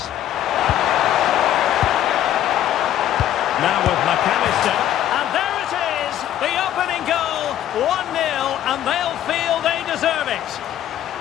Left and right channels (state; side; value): quieter; right; 11.7 dB